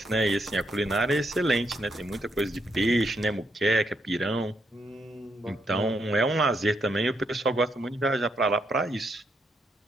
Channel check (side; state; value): both; normal; correlation 0.78